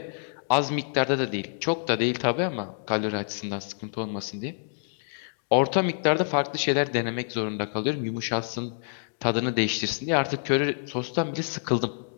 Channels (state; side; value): silent; right; digital silence